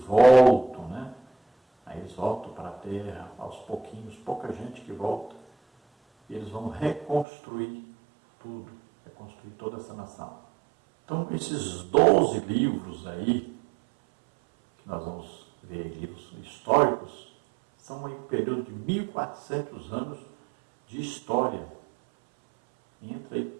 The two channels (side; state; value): left; drops out; at 7.2 s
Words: né? Aí eles voltam para a terra, aos pouquinhos, pouca gente que volta, e eles vão reconstruir tudo, reconstruir toda essa nação. Então, esses 12 livros aí, que nós vamos ver, livros históricos, são um período de 1400 anos de história. Entra aí